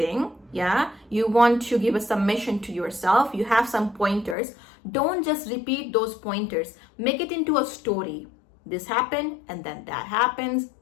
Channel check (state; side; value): drops out; right; at 4.4 s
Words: yeah? You want to give a submission to yourself. You have some pointers. Don't just repeat those pointers. Make it into a story. This happened and then that happens.